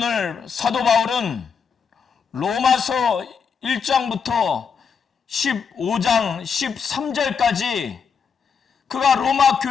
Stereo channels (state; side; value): quieter; right; 6.2 dB